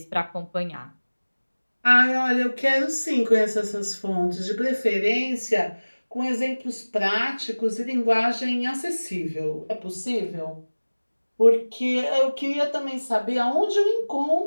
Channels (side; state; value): both; inverted; correlation -1.00